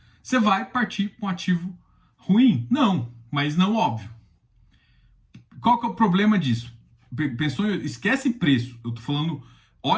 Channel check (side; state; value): both; identical; correlation 1.00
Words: Você vai partir para um ativo ruim? Não, mas não óbvio. Qual que é o problema disso? Pensou, esquece preço. Eu tô falando,